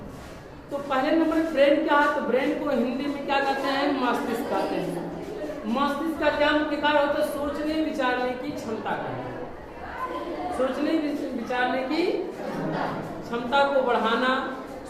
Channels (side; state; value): both; identical; correlation 1.00